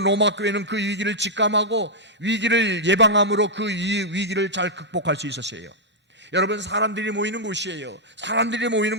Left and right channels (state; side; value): normal; both; correlation -0.07